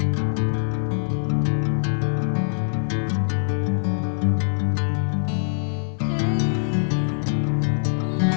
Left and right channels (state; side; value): silent; right; digital silence